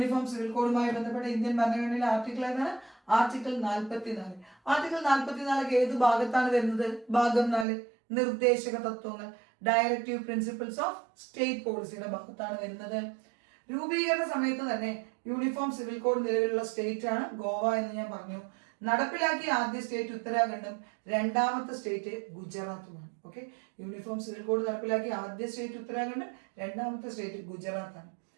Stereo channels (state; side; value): drops out; left; at 7.7 s